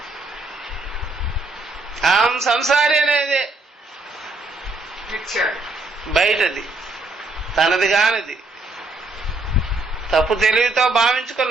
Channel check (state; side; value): quieter; left; 3.1 dB